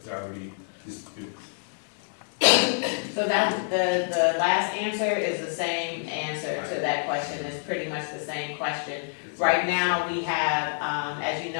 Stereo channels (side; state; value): right; silent; digital silence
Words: already distributed? So that, the last answer is the same answer to that question, it's pretty much the same question. Right now, we have, as you